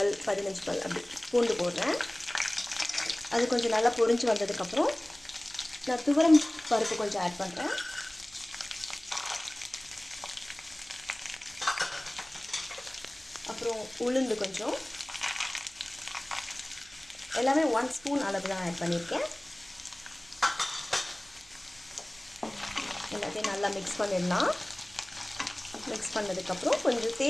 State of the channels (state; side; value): noise; right; hum, 28 dB below the sound